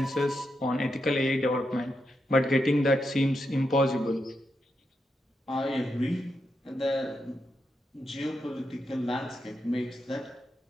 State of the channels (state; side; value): normal; both; correlation 0.85